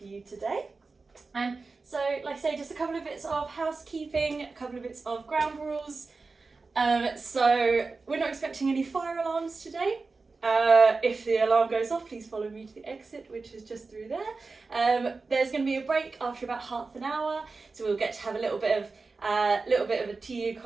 you today. So, like I say, just a couple of bits of housekeeping, a couple of bits of ground rules. So we're not expecting any fire alarms today. If the alarm goes off, please follow me to the exit, which is just through there. There's going to be a break after about half an hour, so we'll get to have a little bit of a tea,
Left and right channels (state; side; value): quieter; left; 4.0 dB